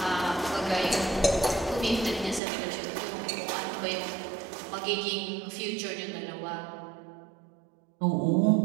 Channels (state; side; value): drops out; left; at 2.4 s